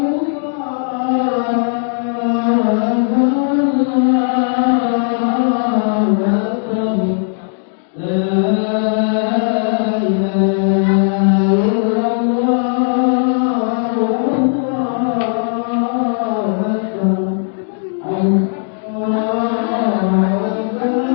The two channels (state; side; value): silent; right; 65 dB below the other